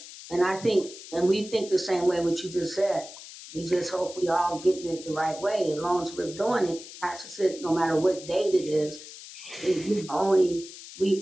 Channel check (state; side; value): noise; left; hiss, 15 dB below the sound